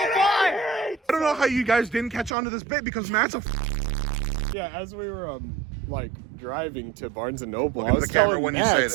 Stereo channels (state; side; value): drops out; left; at 2.4 s